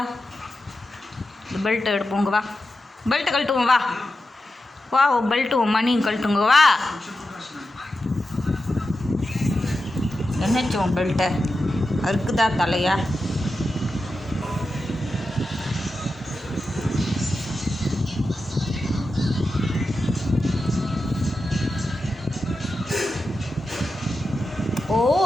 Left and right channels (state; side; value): normal; both; correlation 0.91